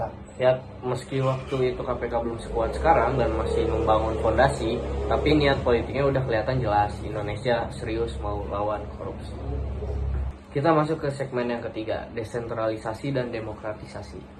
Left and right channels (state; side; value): identical; both; correlation 1.00